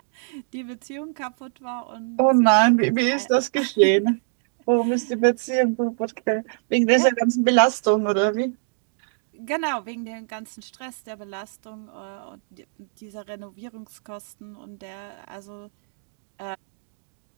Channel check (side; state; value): left; silent; 62 dB below the other